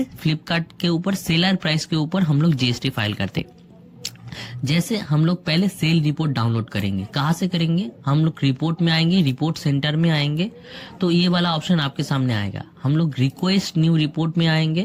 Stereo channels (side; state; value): both; identical; correlation 1.00